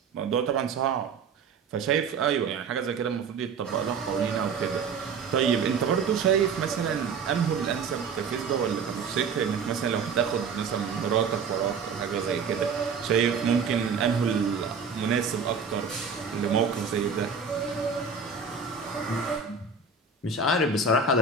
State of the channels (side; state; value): left; quieter; 5.4 dB